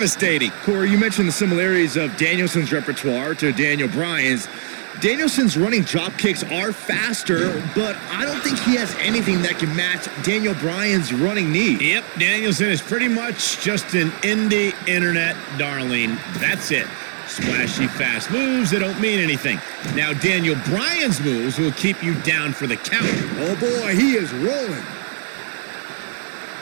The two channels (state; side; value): silent; left; digital silence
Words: Corey, you mentioned the similarities of Danielson's repertoire to Daniel Bryan's. Danielson's running drop kicks are faster, but I don't think he has anything that can match Daniel Bryan's running knee. Yep, Danielson is pretty much just an indie internet darling. That's it. Splashy fast moves that don't mean anything. Now Daniel Bryan's moves will keep you down for the count. Oh boy, he is rolling.